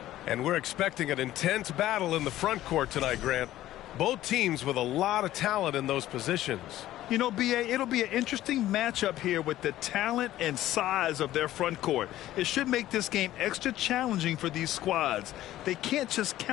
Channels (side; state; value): right; quieter; 14.2 dB